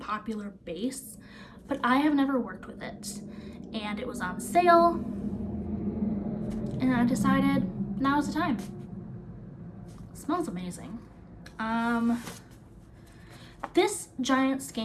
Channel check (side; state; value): both; identical; correlation 1.00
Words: base, but I have never worked with it. And it was on sale, and I decided now's the time. It smells amazing. This giant